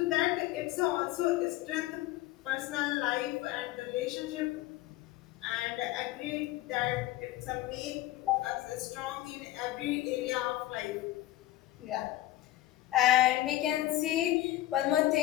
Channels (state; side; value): quieter; right; 15.6 dB